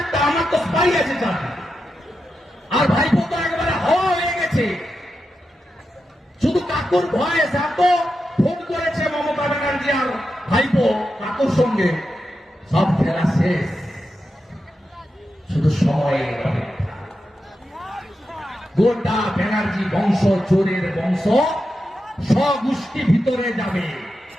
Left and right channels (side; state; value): both; normal; correlation 0.88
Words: আমার তো স্পাই আছে চাকরি। আর ভাইপো তো একেবারে হওয়া হয়ে গেছে। শুধু কাকুর ভয়ে এত ফোন করেছে মমতা ব্যানার্জি আর ভাইপো কাকুর সঙ্গে, সব খেলা শেষ, শুধু সময়ের অপেক্ষা। গোটা ব্যানার্জি বংশ চোরের বংশ স্বগোষ্ঠী ভিতরে যাবে।